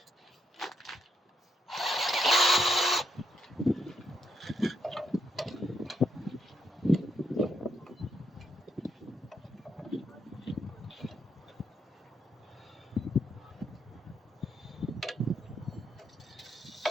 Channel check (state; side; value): normal; both; correlation 0.78